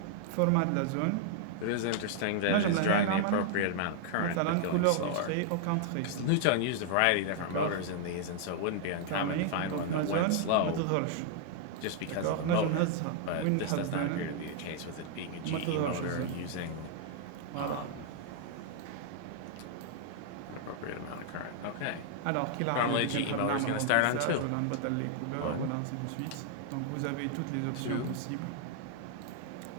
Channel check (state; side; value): different; both; correlation -0.01